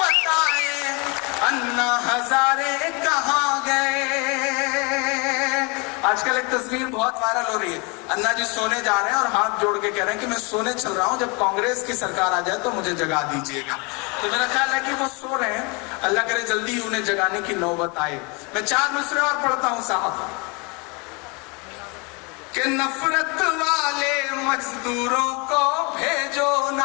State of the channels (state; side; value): quieter; right; 29.9 dB